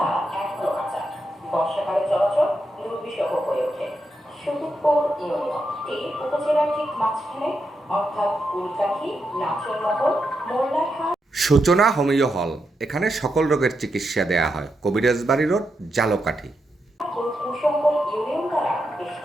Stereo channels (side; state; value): both; normal; correlation 0.84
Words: এখনো কাঁচা, বর্ষাকালে চলাচল দুর্বিষহ হয়ে ওঠে। সুদূরপুর ইউনিয়নটি উপজেলার ঠিক মাঝখানে, অর্থাৎ উলকাঠি, নাচনমহল, মোল্লারহাট। সূচনা হোমিও হল, এখানে সকল রোগের চিকিৎসা দেয়া হয়। কবিরাজবাড়ি রোড, জালকাঠি। ও কুশঙ্গল ইউনিয়ন দ্বারা